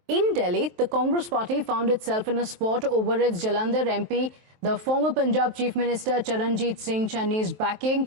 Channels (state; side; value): late; left; 23 ms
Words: in Delhi, the Congress party found itself in a spot over its Jalandhar MP, the former Punjab Chief Minister Charanjit Singh Channi's backing